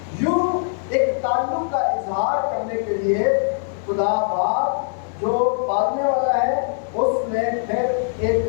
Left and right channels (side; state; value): right; silent; 59 dB below the other